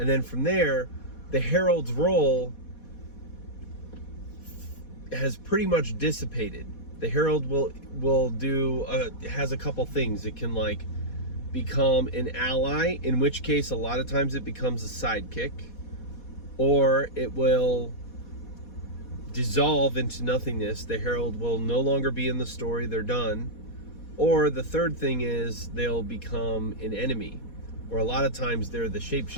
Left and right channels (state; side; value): late; right; 4.2 ms